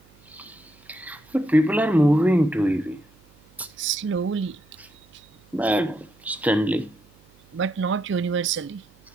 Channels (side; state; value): right; noise; hum, 29 dB below the sound